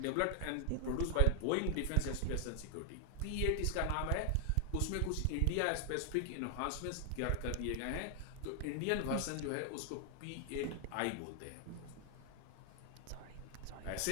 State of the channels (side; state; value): both; different; correlation 0.00